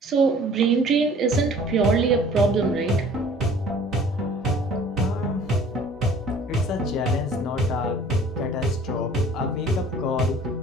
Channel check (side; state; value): both; normal; correlation 0.50